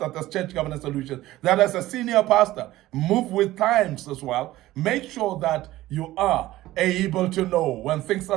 as Church Governance Solutions, that as a senior pastor, move with times as well. Make sure that you are able to know when things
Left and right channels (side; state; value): left; quieter; 16.2 dB